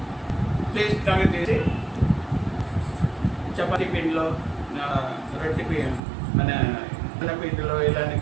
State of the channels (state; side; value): drops out; left; at 6.0 s